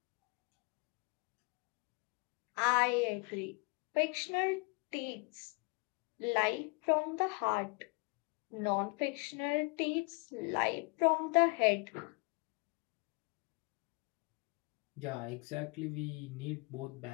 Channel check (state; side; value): quieter; right; 33.2 dB